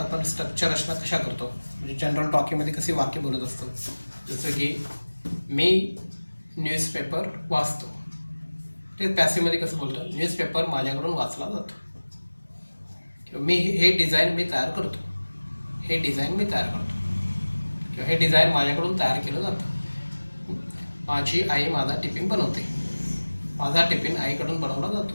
स्ट्रक्चर रचना कशा करतो, म्हणजे जनरल टॉकिंगमध्ये कशी वाक्य बोलत असतो. जसं की मी न्यूजपेपर वाचतो, ते पॅसिव्हमध्ये कसं बोलतो, न्यूजपेपर माझ्याकडून वाचला जातो. किंवा मी हे डिझाईन मी तयार करतो, हे डिझाईन मी तयार करतो, किंवा हे डिझाईन माझ्याकडून तयार केलं जातं. माझी आई माझा टिफिन बनवते, माझा टिफिन आईकडून बनवला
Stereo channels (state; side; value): inverted; both; correlation -1.00